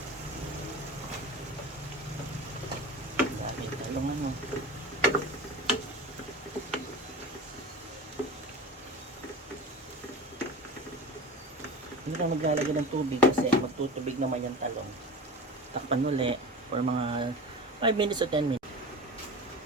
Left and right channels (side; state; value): both; normal; correlation 0.32